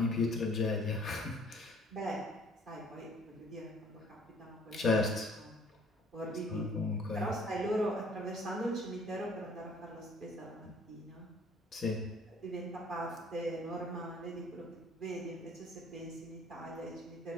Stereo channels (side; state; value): both; normal; correlation 0.56